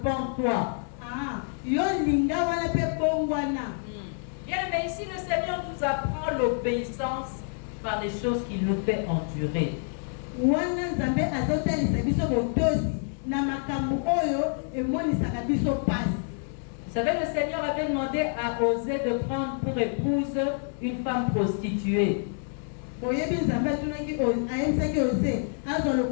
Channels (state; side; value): silent; right; 60 dB below the other